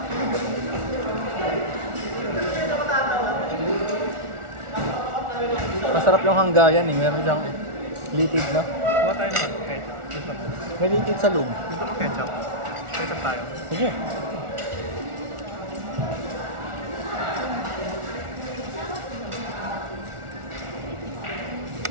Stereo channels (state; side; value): late; left; 1.4 ms